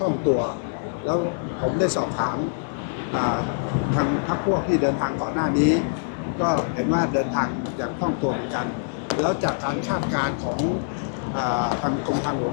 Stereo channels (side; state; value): right; silent; digital silence